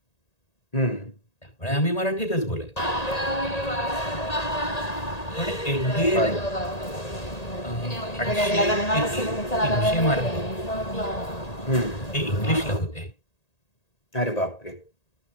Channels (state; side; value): late; right; 1.8 ms